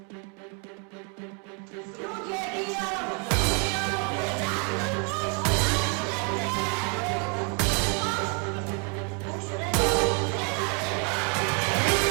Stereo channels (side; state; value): left; quieter; 35.6 dB